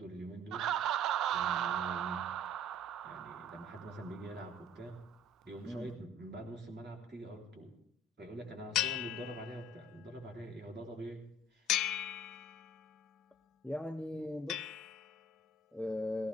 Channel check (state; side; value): normal; both; correlation 0.51